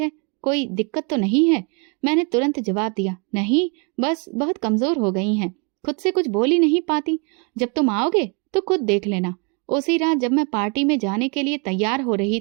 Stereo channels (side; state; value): left; quieter; 33.2 dB